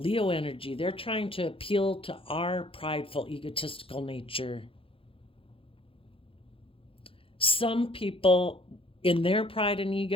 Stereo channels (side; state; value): right; late; 0.27 ms